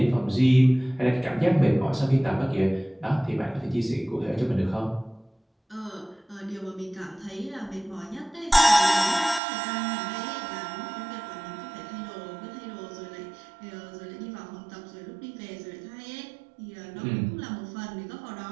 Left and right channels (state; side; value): drops out; left; at 9.4 s